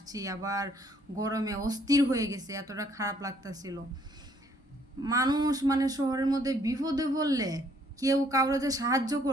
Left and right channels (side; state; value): both; normal; correlation 0.65